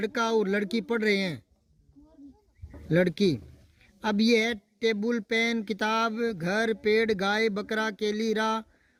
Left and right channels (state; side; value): identical; both; correlation 1.00